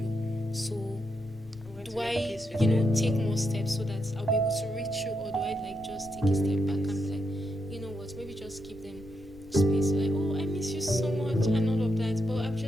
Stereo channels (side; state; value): left; noise; rumble, 21 dB below the sound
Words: So do I, take more steps so that I'll be able to reach you, or do I like just take a step back and be like, you know what, maybe just give them space, like, oh, I miss you so much and all of that. But I've